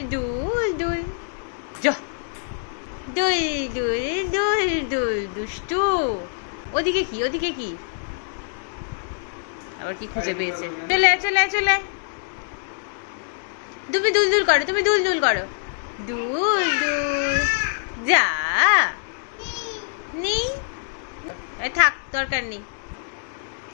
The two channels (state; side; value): silent; right; digital silence